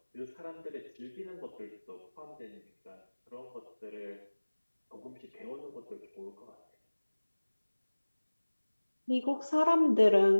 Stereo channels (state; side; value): inverted; both; correlation -1.00